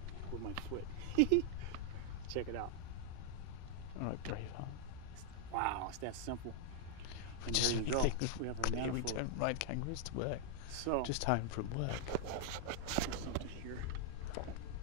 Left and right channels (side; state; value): both; different; correlation 0.00